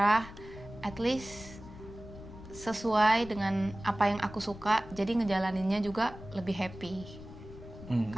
at least sesuai dengan apa yang aku suka, jadi ngejalaninnya juga lebih happy.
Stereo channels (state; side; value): noise; left; rumble, 15 dB below the sound